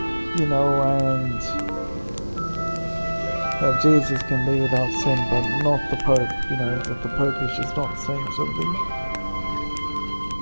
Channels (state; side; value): inverted; both; correlation -1.00